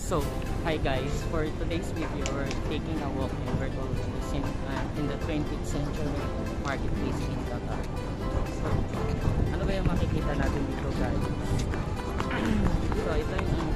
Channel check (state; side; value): identical; both; correlation 1.00